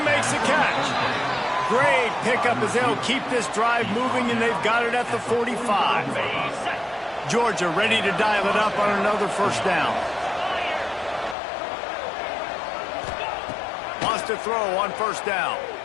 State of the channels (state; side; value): drops out; right; at 11.4 s